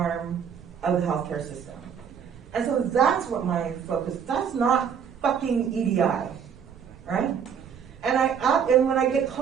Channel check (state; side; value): quieter; left; 7.5 dB